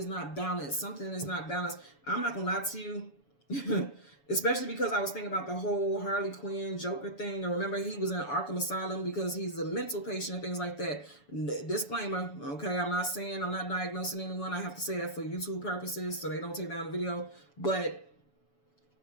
not balanced. Something is not balanced. I'm not going to lie to you. Especially because I was thinking about the whole Harley Quinn Joker thing. And remember, he was in Arkham Asylum because he's a mental patient and things like that. Disclaimer, okay? I'm not saying, I'm not diagnosing anyone. I have to say that for YouTube purposes so they don't take down the video. But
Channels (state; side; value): late; right; 7.0 ms